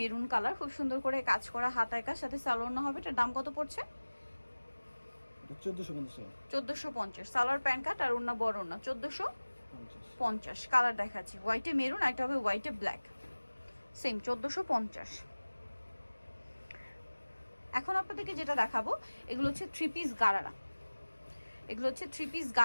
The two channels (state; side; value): inverted; both; correlation -1.00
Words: কালার, খুব সুন্দর করে কাজ করা, হাতায় কাজ, সাথে সালোয়ার হবে। এটার দাম কত পড়ছে? 1450 টাকা। 1450। সালোয়ার প্যান্ট কাট আর ওড়না বড় ওড়না, 1450। কালার দেখাচ্ছি, হোয়াইটে মেরুন, একটা হবে হোয়াইটে ব্ল্যাক, সেম 1450। এখন আপনাদেরকে যেটা দেখাবো এগুলো হচ্ছে থ্রি পিস গারারা। এগুলো হচ্ছে থ্রি পিস